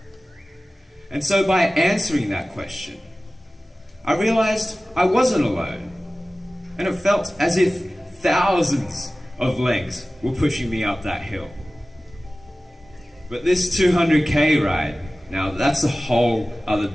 And so by answering that question, I realized I wasn't alone. And it felt as if thousands of legs were pushing me up that hill. But this 200K ride, now that's a whole other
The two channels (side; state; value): both; normal; correlation 0.97